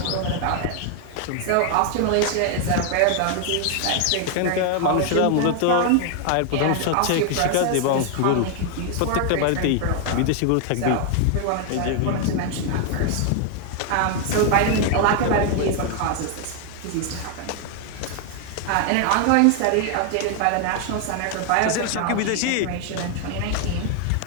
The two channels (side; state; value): both; different; correlation 0.00